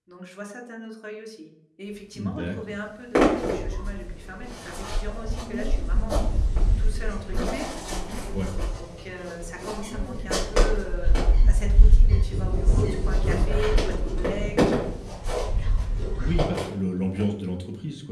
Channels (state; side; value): identical; both; correlation 1.00